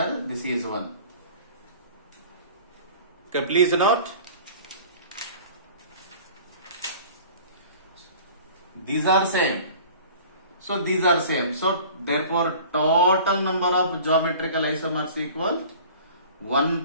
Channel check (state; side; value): inverted; both; correlation -0.45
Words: this is one. Okay, please note. These are same. So these are same. So therefore total number of geometrical isomers equal